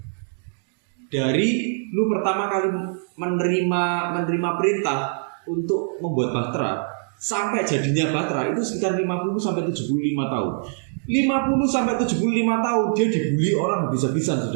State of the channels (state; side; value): silent; left; digital silence